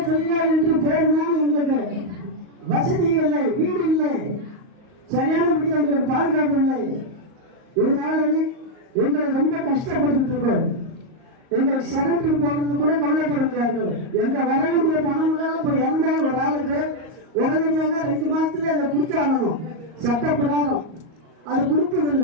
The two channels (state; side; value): late; left; 38 ms